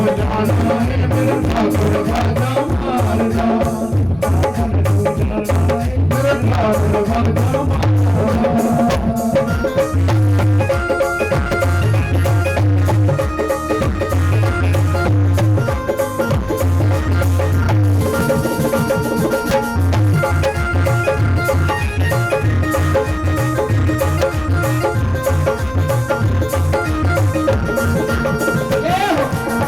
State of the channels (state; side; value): noise; left; rumble, 21 dB below the sound